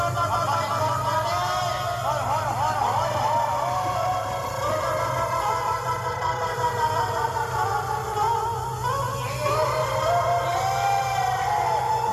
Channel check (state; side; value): identical; both; correlation 1.00